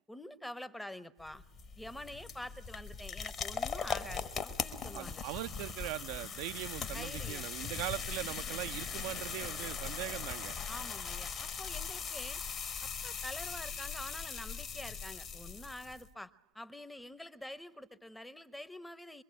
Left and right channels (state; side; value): normal; both; correlation 0.53